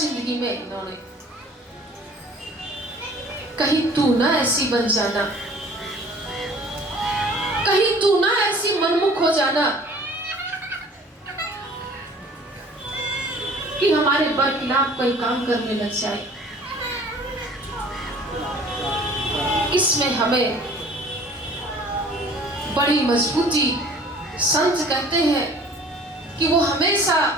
में इन्होंने। कहीं तू ना ऐसी बन जाना, कहीं तू ना ऐसी मनमुख हो जाना कि हमारे बरखिलाफ कोई काम करने लग जाए। इसमें हमें बड़ी मजबूती, संत कहते हैं कि वो हमेशा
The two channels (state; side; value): normal; both; correlation 0.49